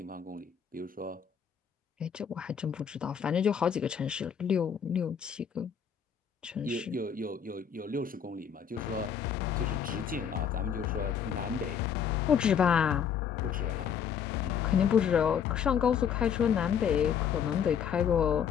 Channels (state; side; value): quieter; right; 7.8 dB